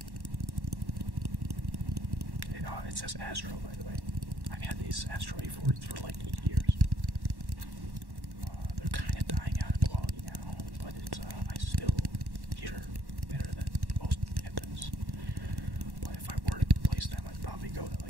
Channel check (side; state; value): left; late; 1.1 ms